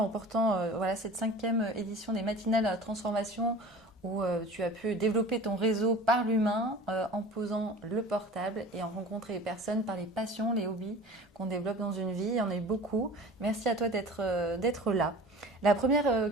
remportant cette 5e édition des matinales à la transformation où tu as pu développer ton réseau par l'humain en posant le portable et en rencontrer les personnes par les passions, les hobbies qu'on développe dans une vie. Il y en a eu beaucoup. Merci à toi d'être là. La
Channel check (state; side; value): normal; both; correlation 0.40